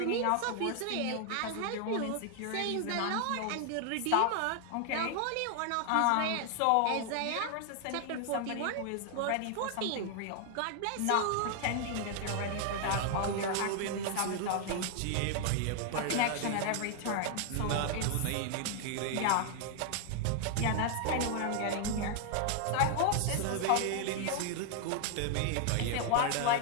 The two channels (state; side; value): different; both; correlation 0.00